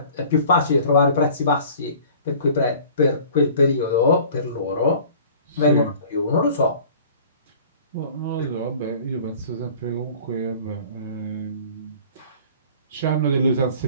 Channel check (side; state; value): both; inverted; correlation -0.47